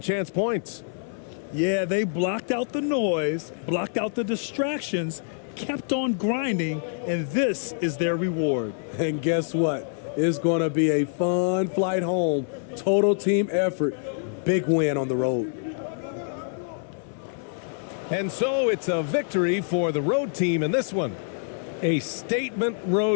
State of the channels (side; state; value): right; silent; 61 dB below the other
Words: chance points. Yeah, they blocked out the noise, blocked out the distractions, kept on grinding, and this is their reward. And guess what? It's going to be a fun flight home. Total team effort. Big win on the road. And so it's a victory for the road team in this one. A statement